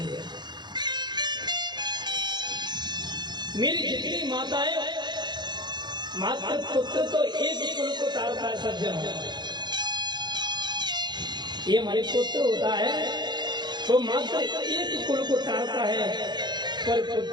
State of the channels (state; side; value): late; left; 0.21 ms